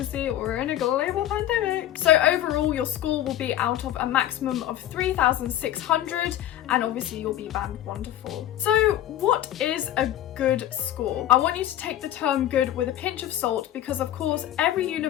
we're in a global pandemic. So overall, your score will be out of a maximum of 3,600, and obviously you'll be band 1 to 4. So what is a good score? I want you to take the term good with a pinch of salt because of course every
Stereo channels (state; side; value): quieter; right; 12.6 dB